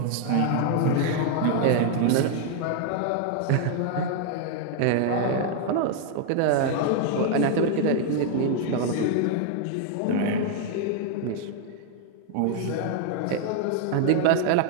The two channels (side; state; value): both; different; correlation 0.00